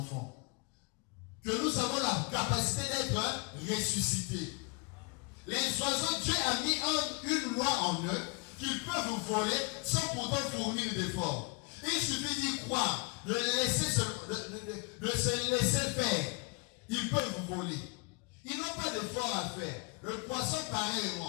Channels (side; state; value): right; quieter; 32.1 dB